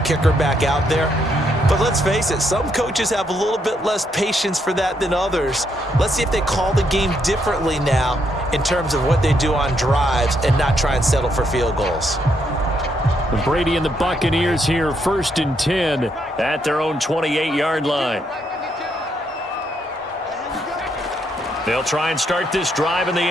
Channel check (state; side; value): normal; both; correlation 0.76